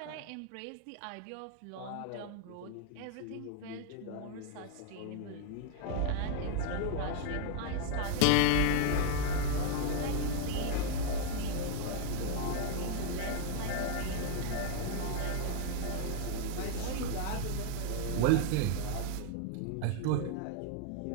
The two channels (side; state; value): both; different; correlation 0.01